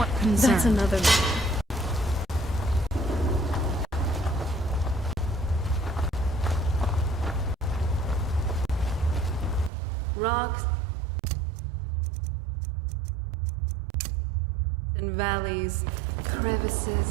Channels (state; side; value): drops out; left; at 9.7 s